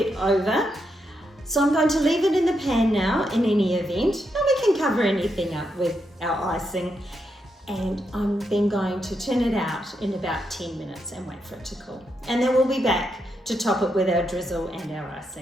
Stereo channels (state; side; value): normal; both; correlation 0.82